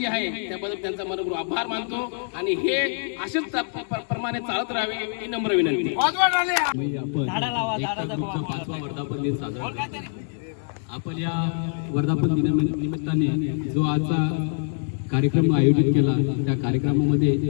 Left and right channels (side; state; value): right; silent; digital silence